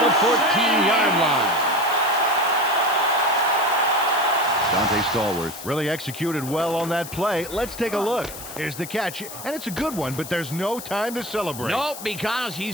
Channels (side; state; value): left; noise; hiss, 12 dB below the sound